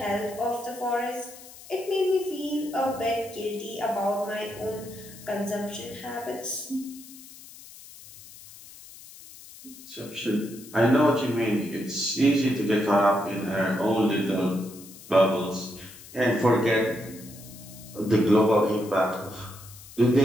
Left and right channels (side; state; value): left; noise; hiss, 18 dB below the sound